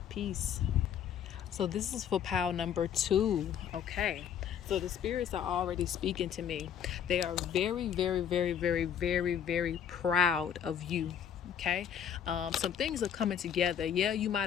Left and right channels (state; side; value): quieter; right; 8.7 dB